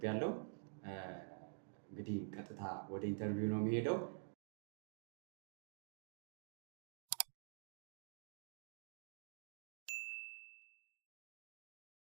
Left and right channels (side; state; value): left; silent; digital silence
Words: ያለው እንግዲህ ቀጥታ ወደ ኢንተርቪው ነው የሚሄደው።